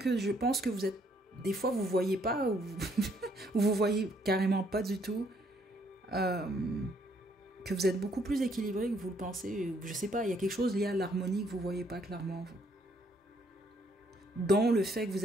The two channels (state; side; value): normal; both; correlation 0.68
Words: je pense que vous êtes, des fois vous voyez pas, ou vous voyez carrément pas du tout, que vous êtes beaucoup plus équilibré que vous le pensez. Je sais pas, il y a quelque chose lié à l'harmonie que vous voyez pas clairement, vous. Dont le fait que